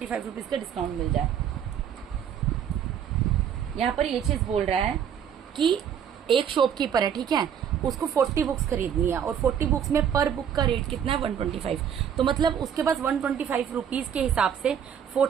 रुपीज का डिस्काउंट मिल जाए। यहाँ पर ये चीज बोल रहा है कि एक शॉपकीपर है, ठीक है, उसको 40 बुक्स खरीदनी है और 40 बुक्स में पर बुक का रेट कितना है 125। तो मतलब उसके पास 125 रुपीज के हिसाब से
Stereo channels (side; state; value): left; quieter; 8.6 dB